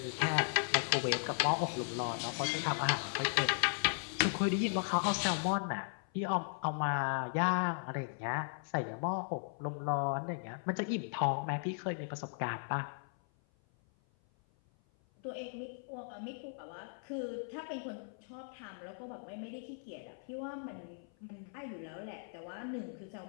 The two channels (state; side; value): silent; right; 53 dB below the other